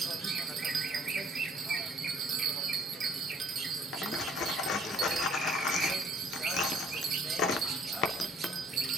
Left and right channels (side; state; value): both; normal; correlation 0.60